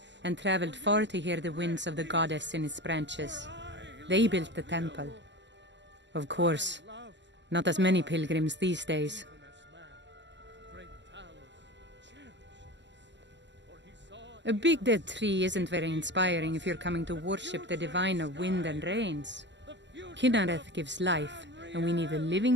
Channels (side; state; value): left; late; 0.52 ms